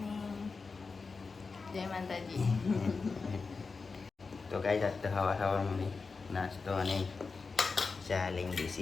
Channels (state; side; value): quieter; right; 4.5 dB